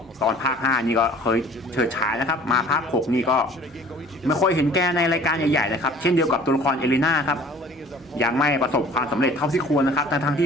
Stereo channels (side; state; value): both; normal; correlation 0.49